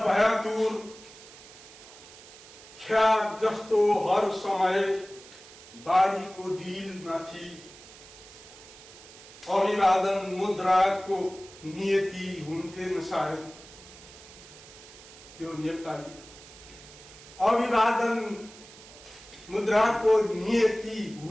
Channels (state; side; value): noise; right; hiss, 19 dB below the sound